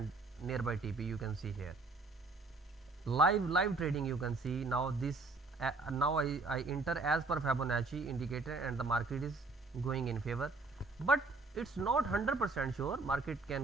nearby TP. You can see here live trading. You can see now this now I enter as per Fibonacci indicator and the market is going in favor, but it's not 100% sure. Market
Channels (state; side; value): quieter; left; 3.6 dB